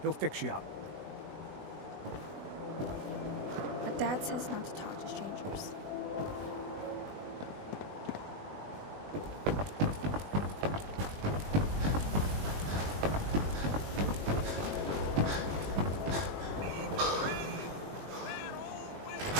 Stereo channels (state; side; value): late; left; 20 ms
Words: fix you up. But Dad says not to talk to strangers.